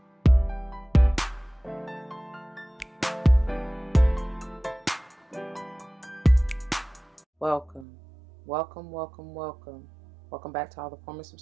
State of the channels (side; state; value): left; drops out; at 7.9 s